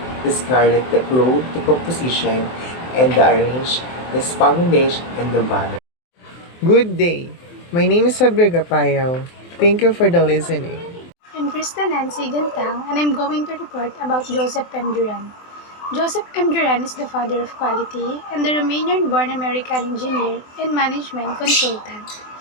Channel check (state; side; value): late; right; 24 ms